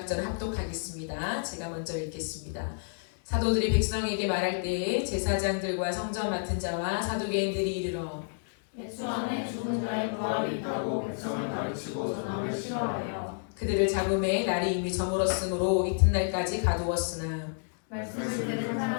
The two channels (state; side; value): silent; right; digital silence